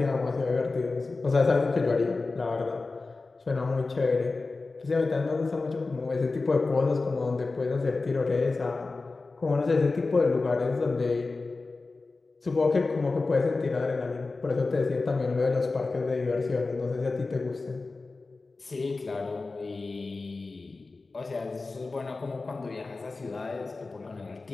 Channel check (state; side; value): quieter; right; 3.7 dB